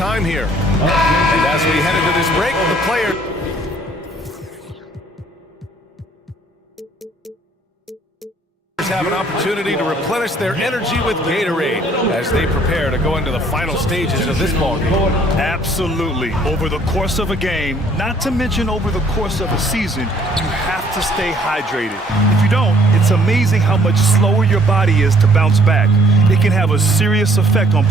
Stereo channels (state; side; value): normal; both; correlation 0.61